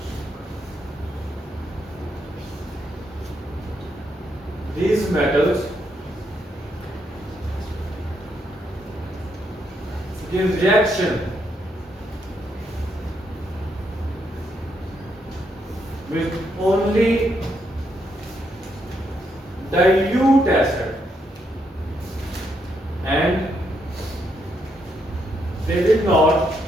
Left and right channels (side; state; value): both; normal; correlation 0.77